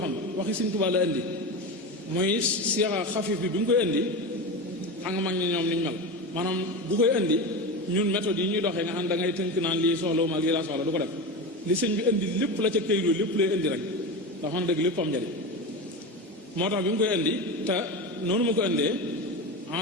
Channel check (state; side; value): normal; both; correlation 0.22